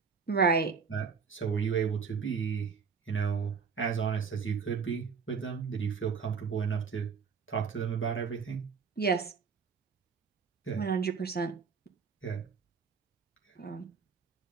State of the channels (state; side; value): quieter; left; 5.7 dB